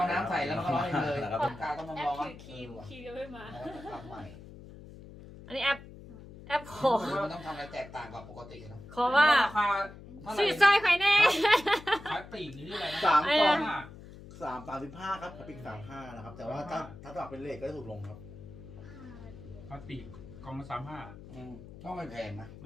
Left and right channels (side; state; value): left; noise; hum, 16 dB below the sound